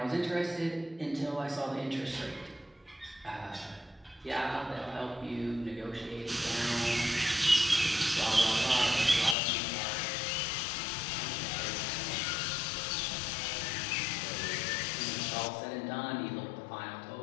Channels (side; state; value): right; drops out; at 9.3 s